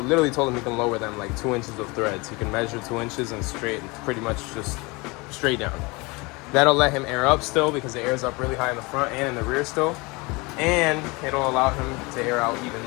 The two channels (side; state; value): right; quieter; 25.9 dB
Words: told him he can lower them like 2 inches of threads. He can measure 2 inches and pretty much just straight down. That'll let him air up still because it airs up really high in the front and in the rear still. And it'll allow him to air out